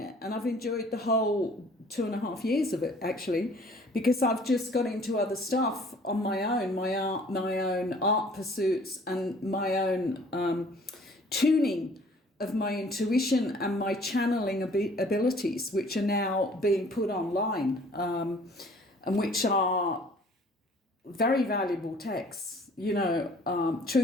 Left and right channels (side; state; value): both; normal; correlation 0.54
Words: And I've enjoyed the whole 2.5 years of it, actually, because I've just got into other stuff on my own, my own art pursuits, and my own tuning of my intuition and my channeling abilities, which are now being put online, and which are very valuable texts,